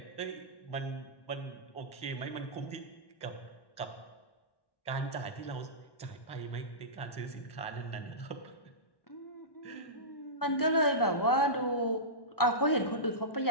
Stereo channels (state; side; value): late; right; 1.1 ms